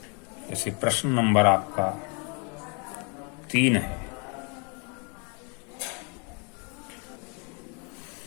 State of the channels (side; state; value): right; quieter; 34.9 dB